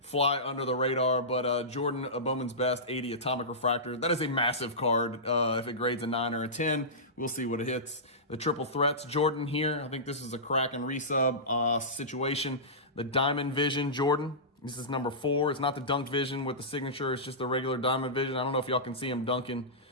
fly under the radar, but Jordan Bowman's Best 80 atomic refractor. That is a massive card. If it grades a 9 or a 10, we'll see what it hits. The triple threats Jordan here. I think this is a crack and resub situation. The Diamond Vision Jordan. This is number 4. It's not the Dunk Vision with the signature. It's just the regular Diamond Vision. I don't know if y'all can see him dunking.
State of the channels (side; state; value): both; normal; correlation -0.18